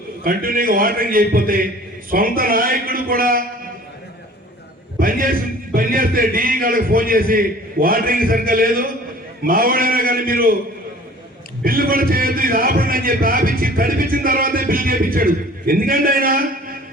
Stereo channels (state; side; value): normal; both; correlation 0.47